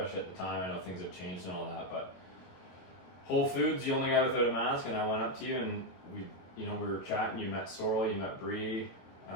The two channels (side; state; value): right; late; 22 ms